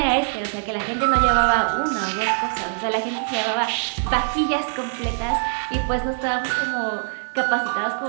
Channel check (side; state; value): left; silent; 59 dB below the other